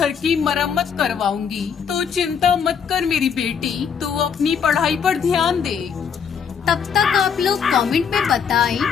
की मरम्मत करवाऊंगी। तो चिंता मत कर मेरी बेटी, तू अपनी पढ़ाई पर ध्यान दे। तब तक आप लोग कमेंट में बताएं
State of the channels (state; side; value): quieter; right; 7.0 dB